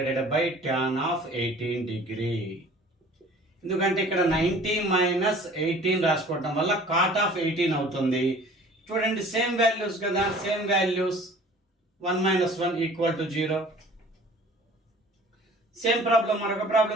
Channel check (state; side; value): normal; both; correlation 0.48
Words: by tan of 18 degree. ఎందుకంటే ఇక్కడ 90 మైనస్ 18 రాసుకోవటం వల్ల cot ఆఫ్ 18 అవుతుంది. చూడండి, సేమ్ వాల్యూస్ కదా, same values. 1 minus 1 equal to 0. Same problem, మరొక